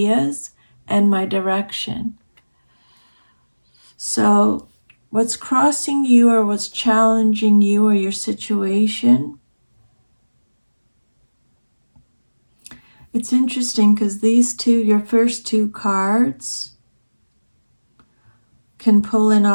and my direction. So what's crossing you or what's challenging you or your situation, it's interesting because these two, your first two cards, can pull in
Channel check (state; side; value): inverted; both; correlation -1.00